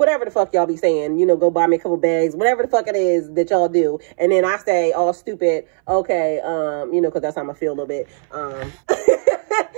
the fuck y'all be saying, you know, go buy me a couple bags, whatever the fuck it is that y'all do. And then I say, all stupid, okay, you know, because that's how I feel a little bit.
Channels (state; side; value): silent; left; 64 dB below the other